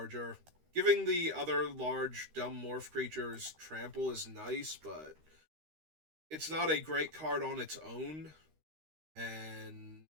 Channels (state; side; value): late; left; 13 ms